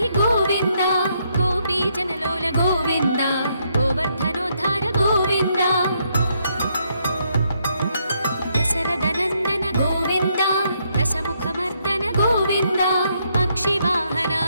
गोविन्द गोपीजनलोल गोविन्द गोवर्धनोद्धार गोविन्द दशरथनन्दन गोविन्द दशमुखमर्दन गोविन्द पक्षिवाहन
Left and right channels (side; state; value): both; inverted; correlation -0.75